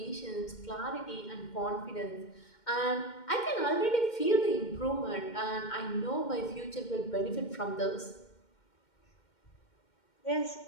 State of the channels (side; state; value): right; late; 2.1 ms